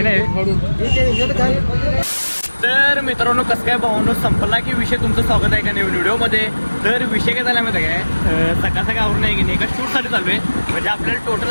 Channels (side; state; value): both; inverted; correlation -1.00